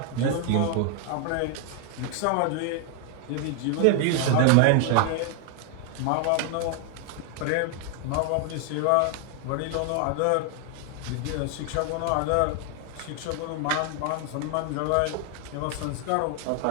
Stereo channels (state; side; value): different; both; correlation 0.00